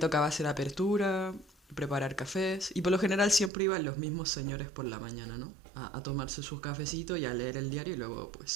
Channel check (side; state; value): left; drops out; at 3.5 s